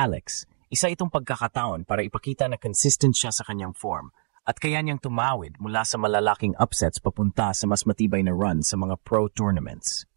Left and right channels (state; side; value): silent; left; digital silence